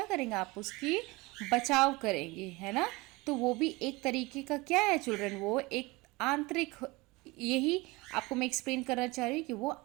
करेंगे? आप उसकी बचाव करेंगे, है ना? तो वो भी एक तरीके का क्या है चिल्ड्रन? वो एक आंतरिक, यही आपको मैं एक्सप्लेन करना चाह रही हूँ कि वो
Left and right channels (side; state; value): left; quieter; 23.2 dB